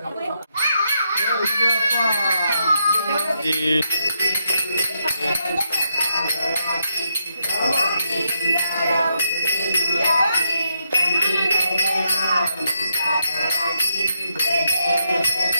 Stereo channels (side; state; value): both; inverted; correlation -0.80